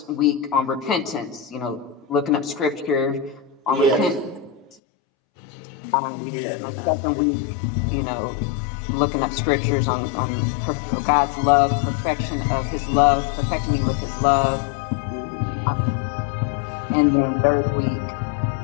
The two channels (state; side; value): drops out; right; at 4.8 s